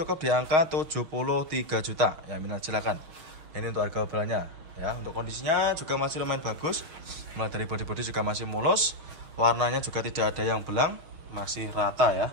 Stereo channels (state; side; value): late; left; 6.4 ms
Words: di angka 73 juta. Ya, minat silakan. Ini untuk harga obralnya ya. Untuk kondisinya juga masih lumayan bagus. Mulai dari bodi-bodi juga masih mulus. Warnanya juga tidak ada yang belang, masih rata ya.